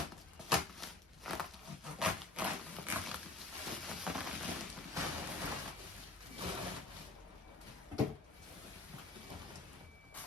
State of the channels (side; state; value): right; quieter; 3.1 dB